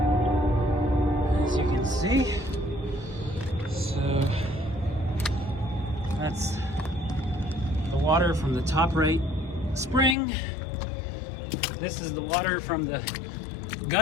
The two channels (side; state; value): right; drops out; at 10.2 s